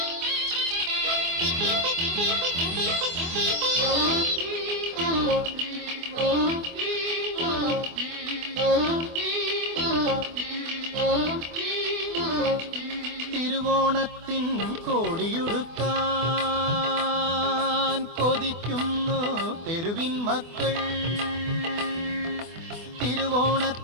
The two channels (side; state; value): left; late; 24 ms